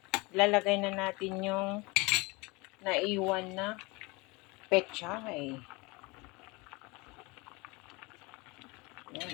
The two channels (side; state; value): right; quieter; 25.7 dB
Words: lalagay na natin yung naiwan na pechay.